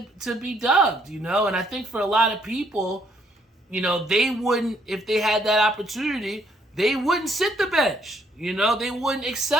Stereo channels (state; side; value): normal; both; correlation 0.69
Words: to be dubbed, And I think for a lot of people, they wouldn't, if they had that opportunity, they wouldn't sit the bench. They wouldn't